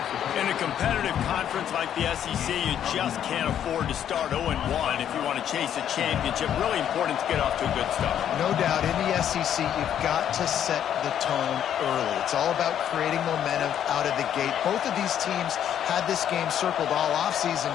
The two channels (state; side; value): quieter; right; 9.8 dB